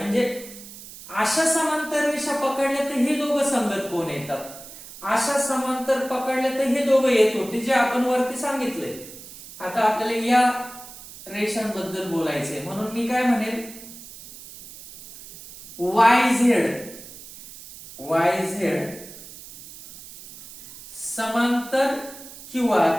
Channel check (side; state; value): right; noise; hiss, 16 dB below the sound